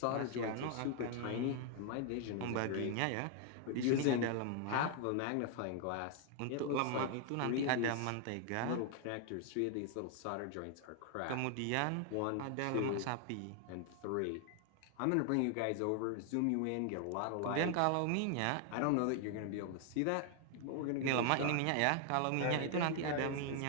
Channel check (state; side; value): different; both; correlation 0.00